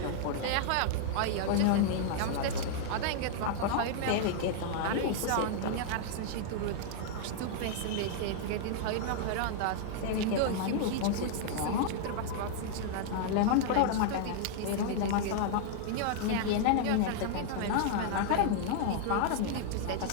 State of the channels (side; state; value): both; different; correlation -0.01